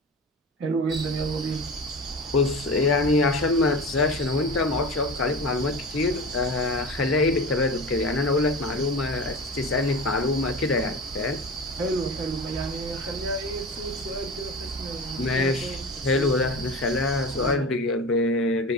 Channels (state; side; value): normal; both; correlation 0.31